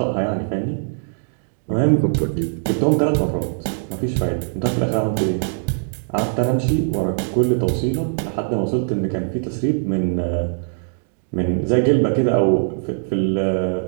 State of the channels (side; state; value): left; silent; digital silence